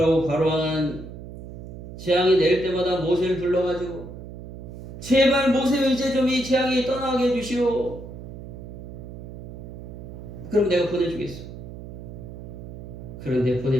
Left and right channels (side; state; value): right; noise; hum, 12 dB below the sound